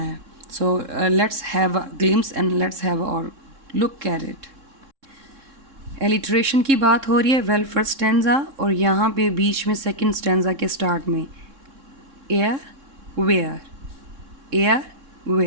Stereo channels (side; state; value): left; late; 3.6 ms